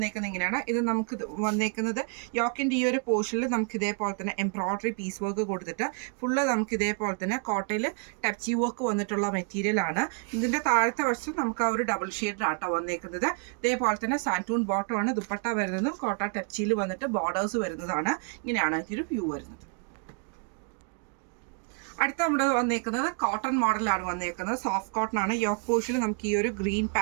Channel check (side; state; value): left; quieter; 37.8 dB